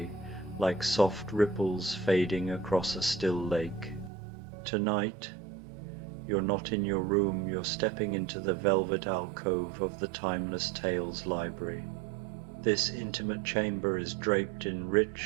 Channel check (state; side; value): drops out; left; at 4.1 s